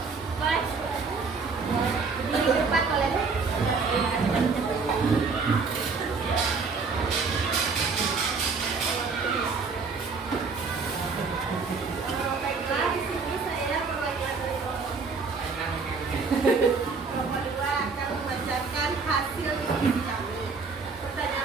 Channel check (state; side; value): quieter; left; 4.7 dB